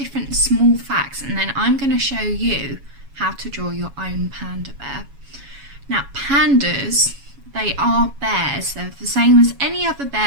small facts and then I'm going to show you how to draw your own panda bear. Now pandas, they are bears. They're the same as any other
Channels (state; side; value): late; left; 7.2 ms